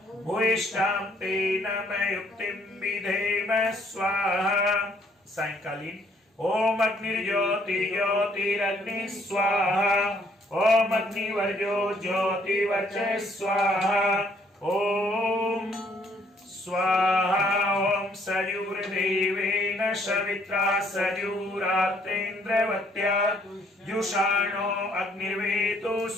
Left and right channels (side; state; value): both; normal; correlation 0.65